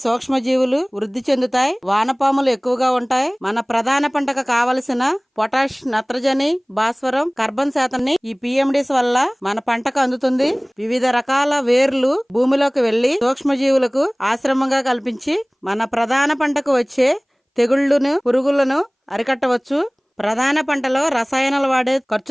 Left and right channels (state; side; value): identical; both; correlation 1.00